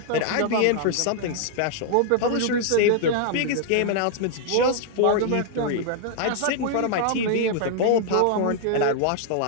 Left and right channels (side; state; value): both; different; correlation -0.01